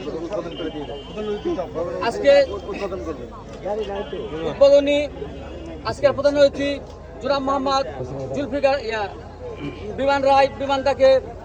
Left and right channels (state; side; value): identical; both; correlation 1.00